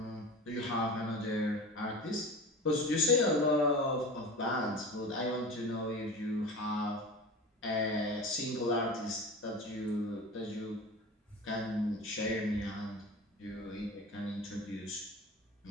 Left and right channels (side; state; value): both; normal; correlation 0.33